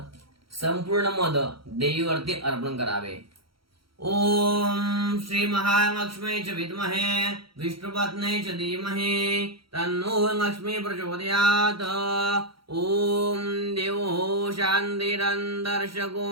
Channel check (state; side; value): late; left; 0.74 ms